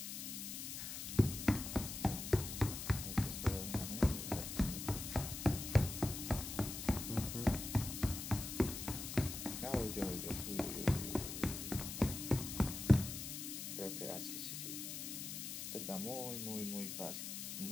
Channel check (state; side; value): noise; left; hiss, 6 dB below the sound